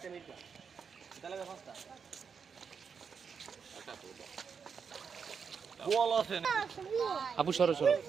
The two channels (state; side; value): quieter; left; 6.2 dB